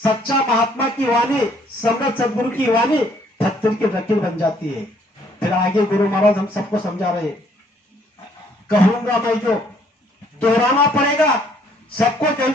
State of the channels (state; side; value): normal; both; correlation 0.64